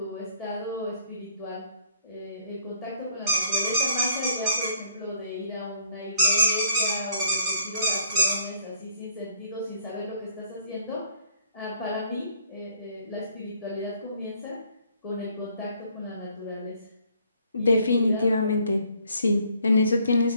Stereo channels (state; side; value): inverted; both; correlation -0.64